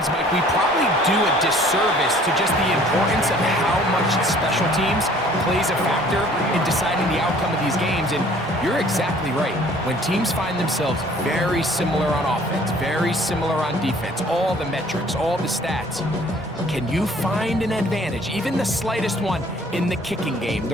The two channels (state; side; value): normal; both; correlation 0.55